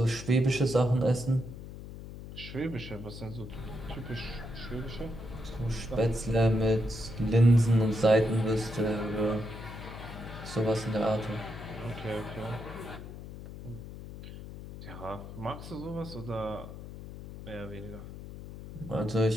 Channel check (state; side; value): noise; left; hum, 12 dB below the sound